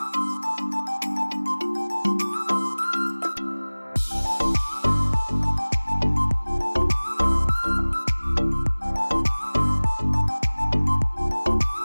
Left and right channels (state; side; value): inverted; both; correlation -1.00